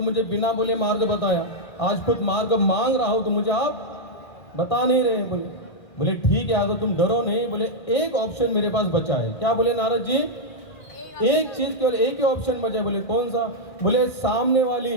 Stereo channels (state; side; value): late; right; 1.6 ms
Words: मुझे बिना बोले मार्ग बताया, आज खुद मार्ग मांग रहा हूं तो मुझे आप बता नहीं रहे। बोले ठीक है, अगर तुम डरो नहीं। बोले एक ऑप्शन मेरे पास बचा है। क्या बोले नारद जी? एक चीज, केवल एक ही ऑप्शन बचा है। बोले कौन सा? बोले सामने वाली